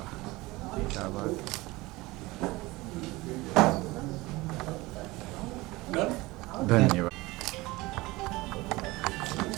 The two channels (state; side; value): quieter; left; 21.0 dB